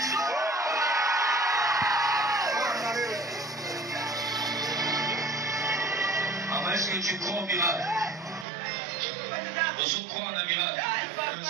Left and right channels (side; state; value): left; drops out; at 8.5 s